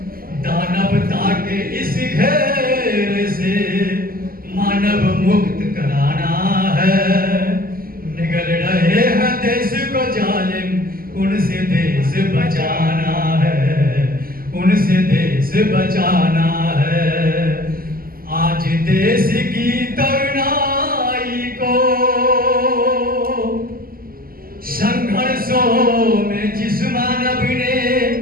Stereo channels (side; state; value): left; late; 0.42 ms